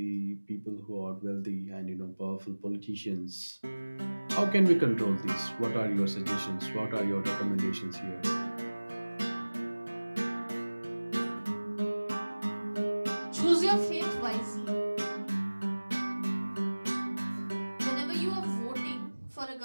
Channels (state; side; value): inverted; both; correlation -1.00